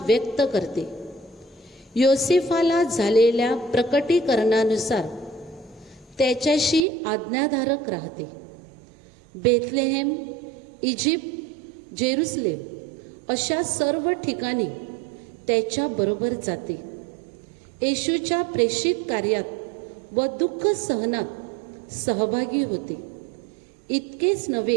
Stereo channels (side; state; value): left; drops out; at 6.9 s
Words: व्यक्त करते. योसेफाला झालेल्या प्रकटीकरणानुसार त्याच्याशी आज्ञाधारक राहते. बेथलेहेम, इजिप्त, जेरुसलेम अशा सर्व ठिकाणी त्याच्याबरोबर जाते. येशूच्या प्रेषित कार्यात व दुःख सहनात सहभागी होते. इतकेच